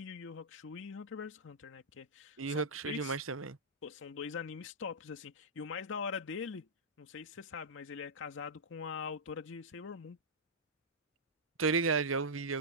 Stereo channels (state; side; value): normal; both; correlation -0.11